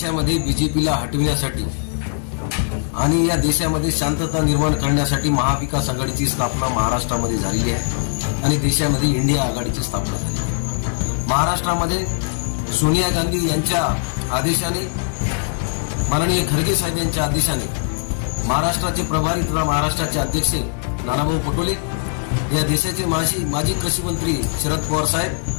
बीजेपीला हटविण्यासाठी आणि या देशामध्ये शांतता निर्माण करण्यासाठी महाविकास आघाडीची स्थापना महाराष्ट्रामध्ये झालेली आहे आणि देशामध्ये इंडिया आघाडीची स्थापना झाली। महाराष्ट्रामध्ये सोनिया गांधी यांच्या आदेशाने, माननीय खरगे साहेब यांच्या आदेशाने महाराष्ट्राचे प्रभारी तथा महाराष्ट्राचे अध्यक्ष नानाभाऊ पटोले, या देशाचे माजी कृषी मंत्री शरद पवार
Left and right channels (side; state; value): right; silent; digital silence